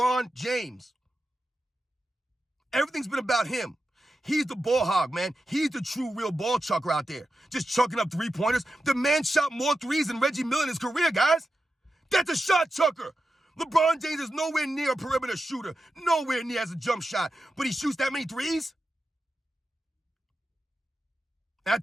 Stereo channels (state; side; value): normal; both; correlation 0.90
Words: James. Everything's been about him. He's the ball hog, man. He's the true, real ball chucker out there. Just chucking up three-pointers. The man shot more threes than Reggie Miller in his career, guys. That's a shot chucker. LeBron James is nowhere near a perimeter shooter. Nowhere near as a jump shot. But he shoots that many threes? And I